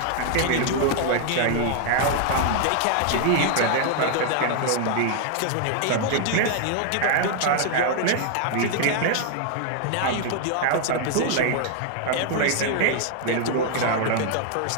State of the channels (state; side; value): different; both; correlation 0.00